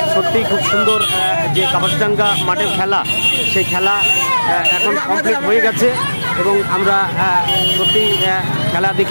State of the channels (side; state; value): both; inverted; correlation -1.00